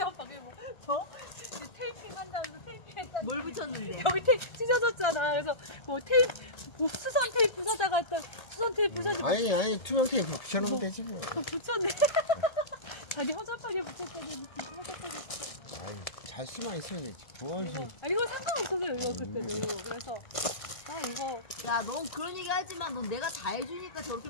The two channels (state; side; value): late; right; 1.3 ms